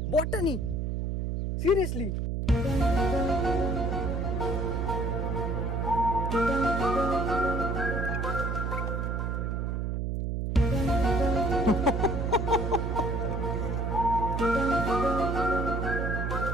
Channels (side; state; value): right; noise; hum, 1 dB below the sound